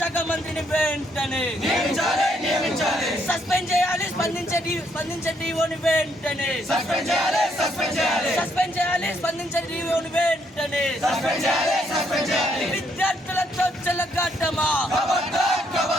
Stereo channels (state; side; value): normal; both; correlation 0.72